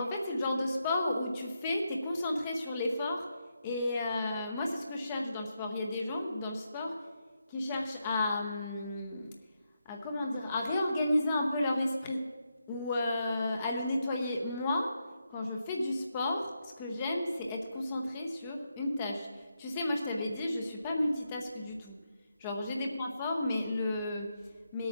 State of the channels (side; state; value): both; inverted; correlation -0.83